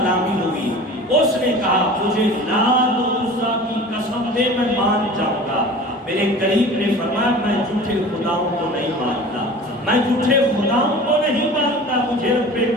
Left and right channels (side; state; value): both; normal; correlation 0.39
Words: ہوئی، اس نے کہا مجھے لات و عزیٰ کی قسم دے میں مان جاؤں گا۔ میرے قریب نے فرمایا میں جھوٹے خداؤں کو نہیں مانتا، میں جھوٹے خداؤں کو نہیں مانتا، مجھے